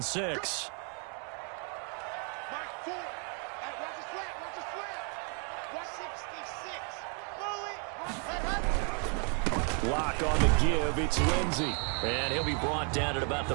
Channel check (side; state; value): left; quieter; 38.9 dB